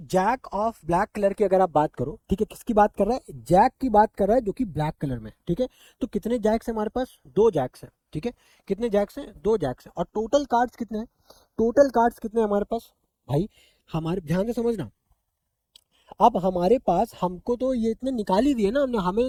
ऑफ ब्लैक कलर की अगर आप बात करो, ठीक है, किसकी बात कर रहा है, जैक की बात कर रहा है जो कि ब्लैक कलर में। ठीक है, तो कितने जैक्स है हमारे पास, 2 जैक्स है। ठीक है, कितने जैक्स हैं, 2 जैक्स है, और टोटल कार्ड्स कितने हैं, टोटल कार्ड्स कितने हैं हमारे पास भाई, हमारे ध्यान से समझना। अब हमारे पास, हमको तो ये इतने निकाल ही दिए ना हमने, हमें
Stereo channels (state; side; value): identical; both; correlation 1.00